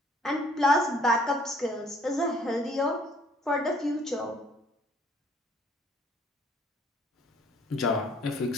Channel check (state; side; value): normal; both; correlation 0.59